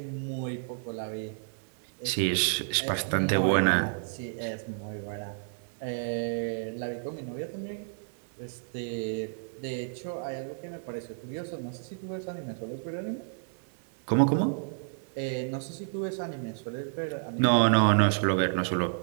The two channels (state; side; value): silent; left; 58 dB below the other